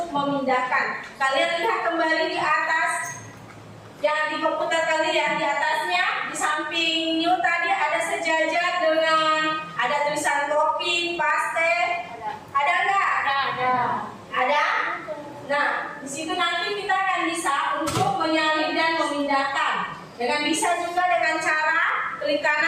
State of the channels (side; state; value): both; identical; correlation 1.00